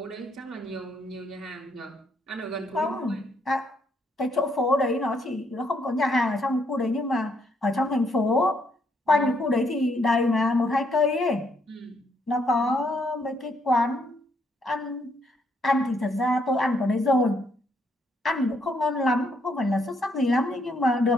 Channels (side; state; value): both; normal; correlation 0.72